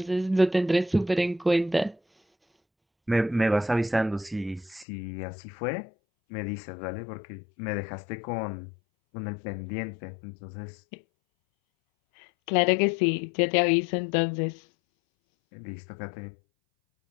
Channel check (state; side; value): drops out; right; at 4.9 s